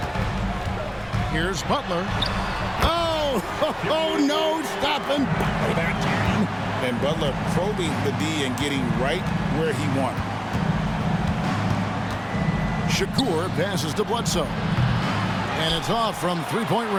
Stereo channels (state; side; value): identical; both; correlation 1.00